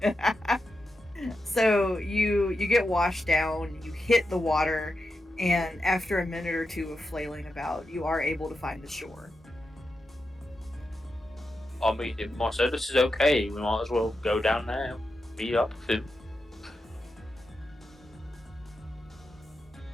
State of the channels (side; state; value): both; normal; correlation 0.88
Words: So you get washed down, you hit the water, and after a minute or two of flailing about, you are able to find the shore. I mean, if Marcellus is okay, we might as well go down now. Meet up with him.